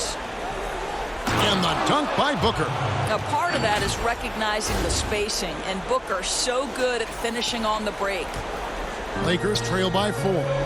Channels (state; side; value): identical; both; correlation 1.00